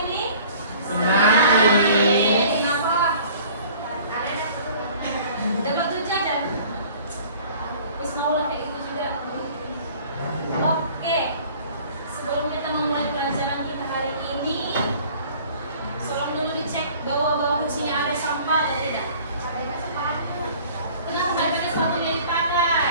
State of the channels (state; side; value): inverted; both; correlation -0.50